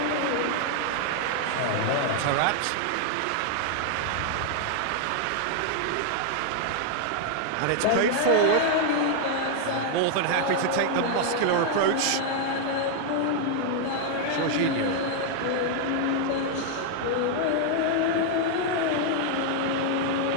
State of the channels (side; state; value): both; different; correlation 0.00